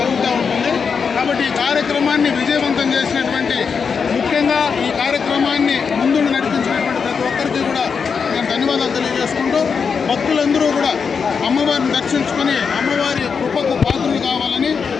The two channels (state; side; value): quieter; right; 5.9 dB